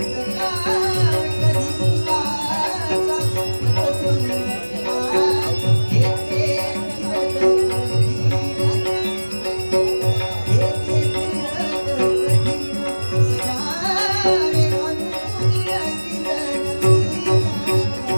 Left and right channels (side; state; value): both; inverted; correlation -1.00